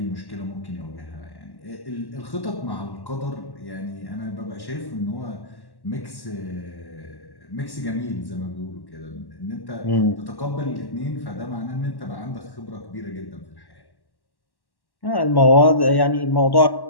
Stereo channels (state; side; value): late; right; 1.1 ms